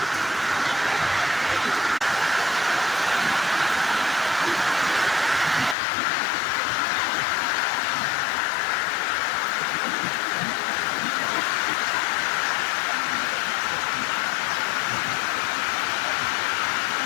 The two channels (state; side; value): drops out; right; at 5.8 s